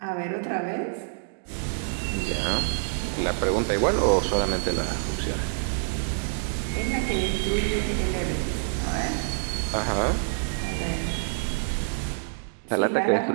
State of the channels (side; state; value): left; silent; digital silence